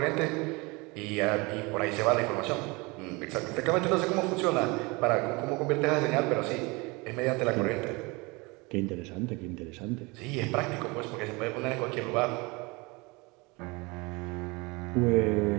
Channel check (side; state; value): left; quieter; 26.1 dB